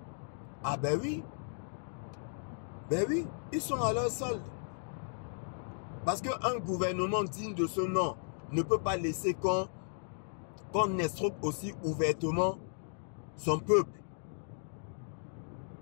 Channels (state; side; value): silent; right; digital silence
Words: Ah ben oui. Ben oui, ils sont à leur solde. Parce qu'un gouvernement digne de ce nom ne peut pas laisser qu'on escroque aussi ouvertement son peuple.